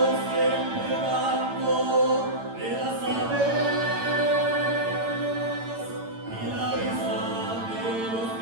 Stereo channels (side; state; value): left; late; 8.9 ms